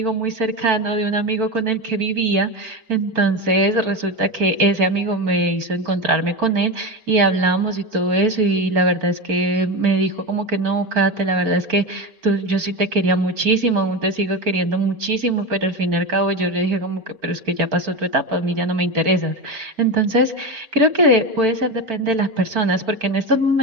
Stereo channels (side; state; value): left; late; 4.5 ms